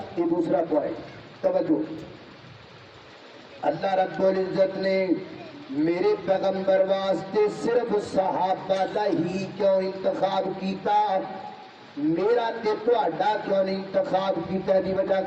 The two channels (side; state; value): both; identical; correlation 1.00